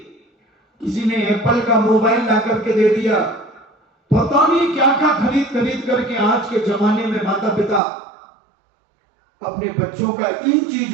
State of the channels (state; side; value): drops out; left; at 7.8 s